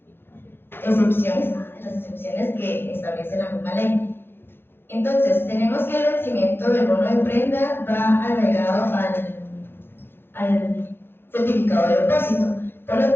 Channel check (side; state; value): right; late; 0.10 ms